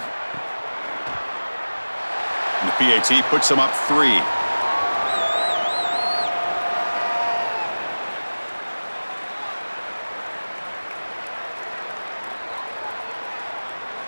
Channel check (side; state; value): both; inverted; correlation -1.00